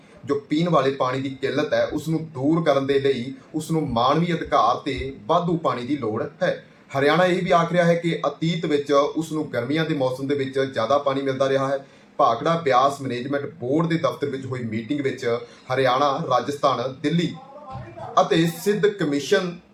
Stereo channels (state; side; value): identical; both; correlation 1.00